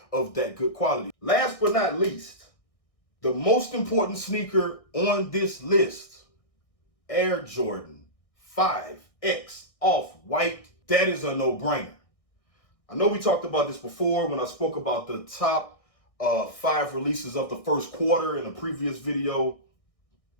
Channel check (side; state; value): right; late; 1.6 ms